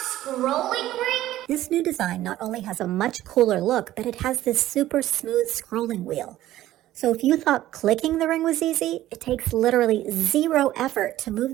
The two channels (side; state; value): left; quieter; 14.4 dB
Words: ring? This new design not only has a much cooler look, but it has this super smooth scrolling wheel. So if you thought clicking the ring was easy, it takes literally zero effort to move